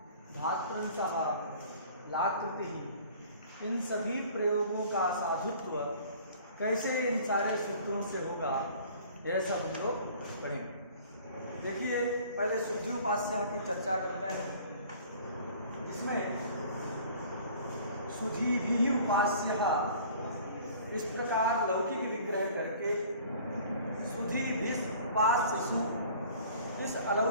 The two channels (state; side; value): inverted; both; correlation -0.49